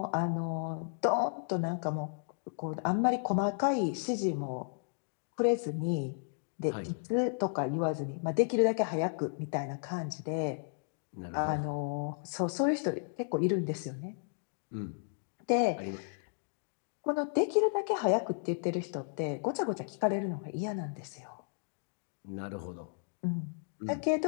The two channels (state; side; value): silent; right; digital silence